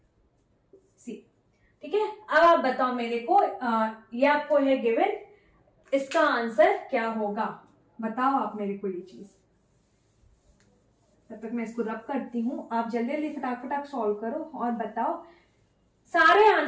c, ठीक है। अब आप बताओ मेरे को, ये आपको है गिवन, इसका आंसर क्या होगा, बताओ आप मेरे को ये चीज। तब तक मैं इसको रब करती हूं, आप जल्दी जल्दी फटाक सॉल्व करो और बताओ, सारे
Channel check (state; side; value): identical; both; correlation 1.00